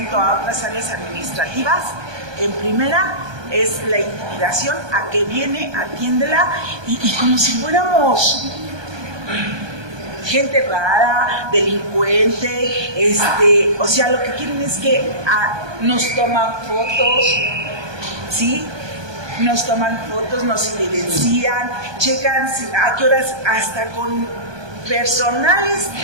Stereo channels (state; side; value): late; left; 1.2 ms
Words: a otras áreas administrativas, en primera es la intimidación a que viene, atiéndela, y como si fuéramos gente rara, delincuente, o sea, lo que quieren es que nos toman fotos, ¿sí? Nos toman fotos, nos evidencian, checan a qué horas, hasta con personal